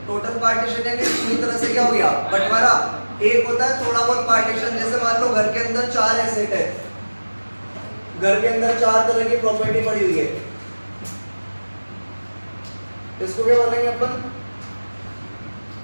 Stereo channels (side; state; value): both; inverted; correlation -1.00